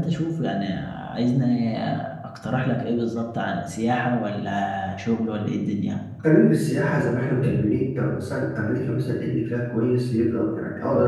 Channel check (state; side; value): identical; both; correlation 1.00